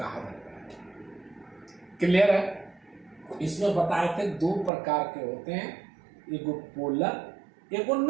जाता है। क्लियर है। इसमें बताए थे दो प्रकार के होते हैं, एगो पोलर एगो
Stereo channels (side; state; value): left; drops out; at 4.7 s